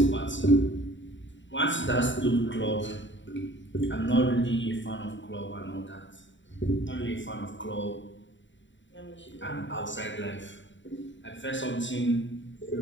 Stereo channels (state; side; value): late; right; 0.54 ms